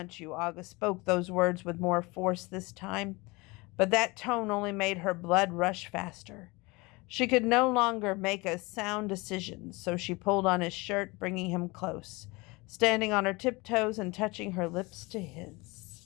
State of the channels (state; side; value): quieter; right; 24.5 dB